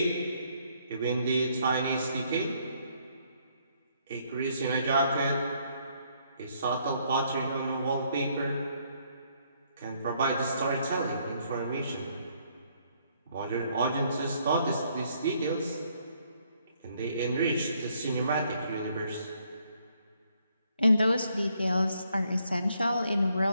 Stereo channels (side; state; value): both; inverted; correlation -0.70